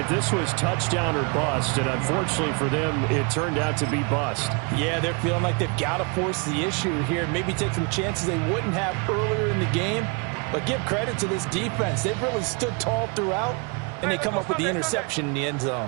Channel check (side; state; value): left; quieter; 33.0 dB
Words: This was touchdown or bust, and unfortunately for them, it turned out to be bust. Yeah, they're feeling like they've got to force the issue here, maybe take some chances they wouldn't have earlier in the game. But give credit to this defense. They've really stood tall throughout, and they come up with the interception in the end